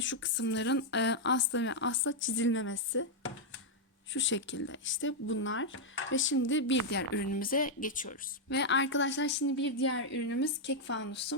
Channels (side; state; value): both; normal; correlation -0.02